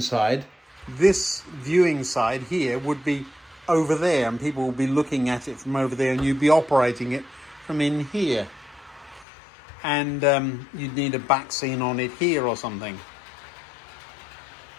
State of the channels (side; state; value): right; drops out; at 9.2 s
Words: this viewing side here would be over there and people will be looking at it from over there and you'd be operating it from in here. And you'd need a back scene on it here or something.